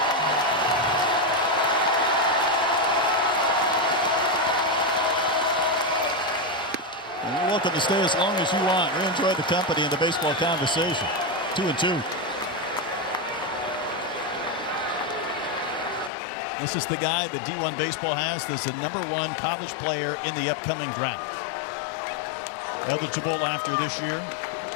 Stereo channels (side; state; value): right; drops out; at 16.1 s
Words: You're welcome to stay as long as you want. We enjoy the company and the baseball conversation. 2-2. This is the guy that D1 Baseball has as the #1 college player in the upcoming draft. Eligible after this year.